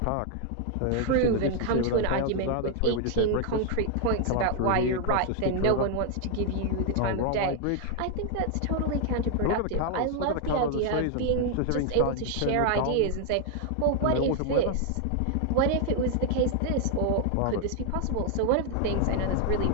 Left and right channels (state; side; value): different; both; correlation 0.00